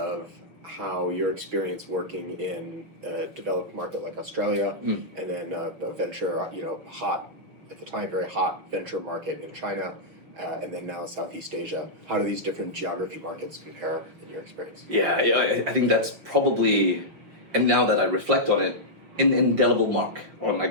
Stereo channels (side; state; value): left; late; 6.3 ms